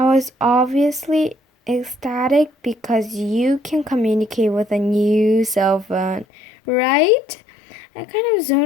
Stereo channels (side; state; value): right; drops out; at 6.2 s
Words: was obviously ecstatic because you can communicate with a new cell phone, right? I kind of